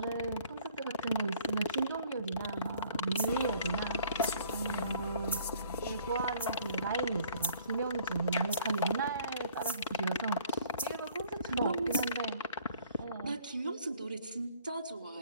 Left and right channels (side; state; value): both; inverted; correlation -0.57